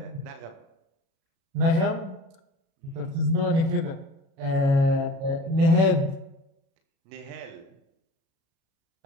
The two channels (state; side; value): late; left; 36 ms